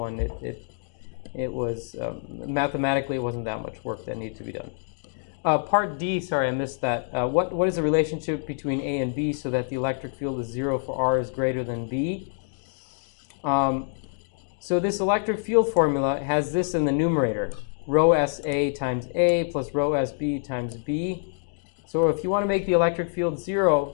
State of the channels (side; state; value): right; silent; digital silence